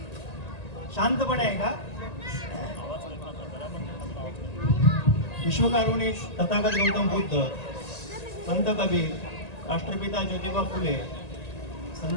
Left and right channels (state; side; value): late; right; 1.9 ms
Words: शांतपणे आहे का? विश्वकारुणिक तथागत गौतम बुद्ध, संत कबीर, राष्ट्रपिता ज्योतिबा फुले,